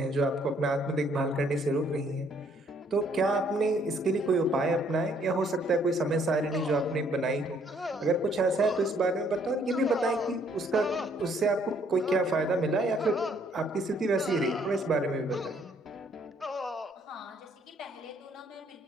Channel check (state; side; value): normal; both; correlation 0.65